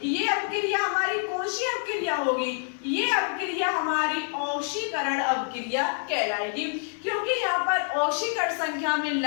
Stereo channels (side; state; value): right; silent; 60 dB below the other